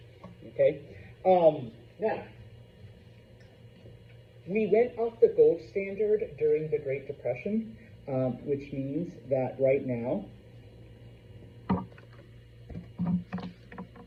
Okay. Now, we went off the gold standard during the Great Depression, which means that right now,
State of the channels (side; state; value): both; identical; correlation 1.00